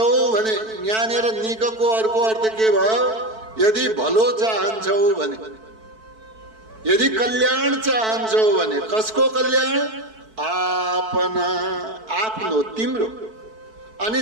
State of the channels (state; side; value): late; left; 4.5 ms